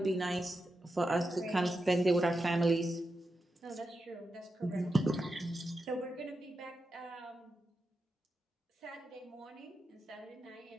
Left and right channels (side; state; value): both; normal; correlation 0.88